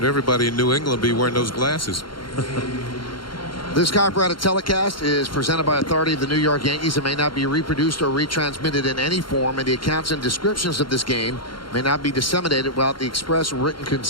everybody in New England will be wearing those glasses. This copyrighted telecast is presented by authority of the New York Yankees. It may not be reproduced or retransmitted in any form, and the accounts and descriptions of this game may not be disseminated without the express written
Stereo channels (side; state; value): right; late; 0.73 ms